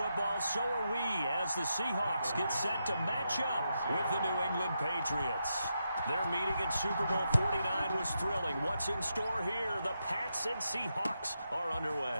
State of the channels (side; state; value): both; inverted; correlation -0.84